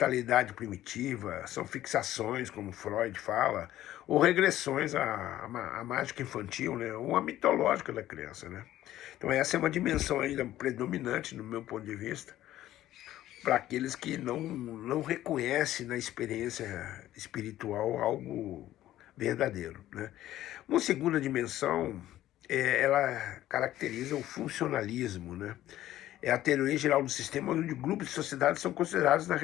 primitiva, são fixações, como Freud fala, ou regressões à mágica infantil, né, ou à mitológica da criança, né. Então essa é uma dimensão ainda predominante, no meu ponto de vista, para aqueles que não reconhecem na experiência espiritual algo verdadeiro, né. Uma segunda dimensão, ela caracteriza o funcionalismo, né. É a teoria geral do sistema onde grupos de sociedades são considerados na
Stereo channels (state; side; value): quieter; right; 13.7 dB